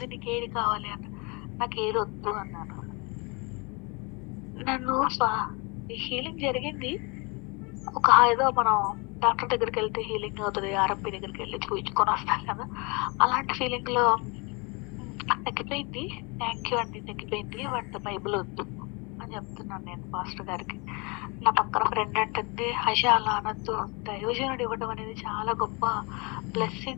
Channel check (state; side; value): quieter; right; 29.4 dB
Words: నీకేది కావాలి" అన్నారు. "నాకేది వద్దు" అన్నాను. నన్ను హీలింగ్ జరిగింది. ఏదో మనం డాక్టర్ దగ్గరికెళ్తే హీలింగ్ అవుతది. ఆర్ఎంపీ దగ్గరికెళ్లి చూయించుకొని వస్తాం కదా! అలాంటి ఫీలింగ్‌లో నాకు తగ్గిపోయింది. థాంక్ యూ అండి తగ్గిపోయింది. బట్ బైబిల్ వద్దు అని చెప్తున్నాను నేను పాస్టర్ గారికి. నా పక్కన ఫ్రెండ్ అంటుంది, "హష అలా అనొద్దు. దైవజనుడు ఇవ్వడం అనేది చాలా గొప్ప